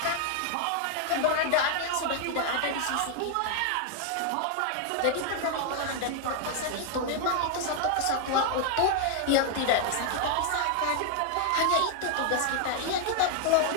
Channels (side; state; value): both; different; correlation 0.00